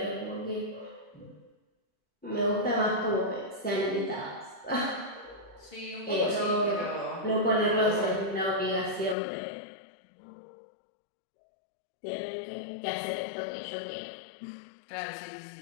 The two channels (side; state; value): right; drops out; at 9.2 s